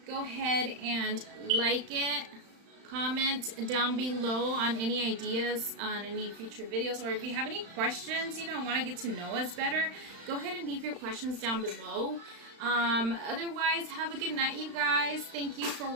go ahead and like it. Comment down below on any ideas on any future videos, or if you have any questions, you know, want to get to know us better, go ahead and leave your questions down below. Otherwise, have a good night, you guys. Thank you for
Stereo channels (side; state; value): left; late; 35 ms